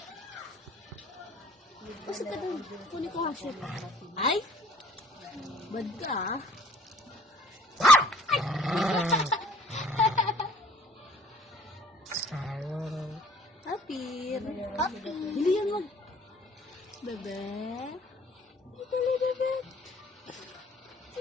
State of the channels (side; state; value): both; normal; correlation 0.55